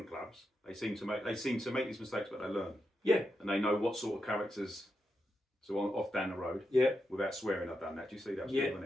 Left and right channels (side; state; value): both; normal; correlation 0.86